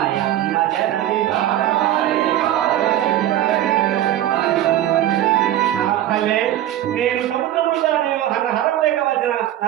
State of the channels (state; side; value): quieter; left; 12.8 dB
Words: నేను సముద్రములో నేను హరం లేక వచ్చిన నా